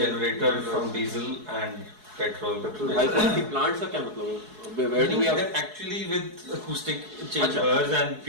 from diesel and petrol. High quality plants का क्या मतलब है? Where do we have? They're actually with acoustic chambers and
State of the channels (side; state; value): left; late; 4.7 ms